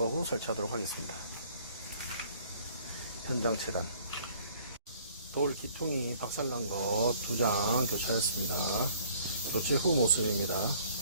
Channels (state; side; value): inverted; both; correlation -0.57